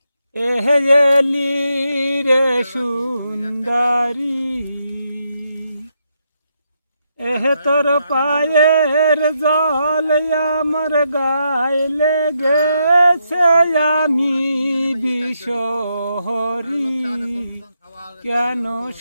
এলি রে সুন্দরী, তোর পায়ের জল আমার গায়ে লেগেছে, আমি বিষহরি কেন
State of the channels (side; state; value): both; inverted; correlation -0.80